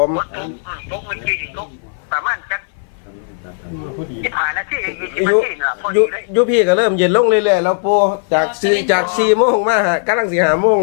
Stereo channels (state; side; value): silent; right; 58 dB below the other